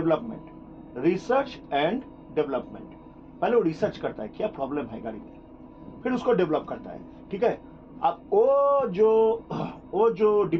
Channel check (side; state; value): both; identical; correlation 1.00